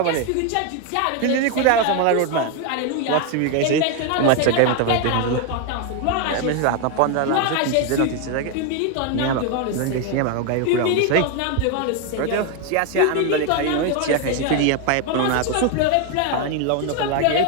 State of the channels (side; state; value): both; different; correlation 0.01